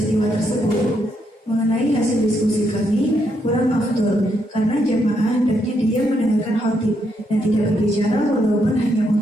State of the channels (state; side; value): normal; both; correlation 0.77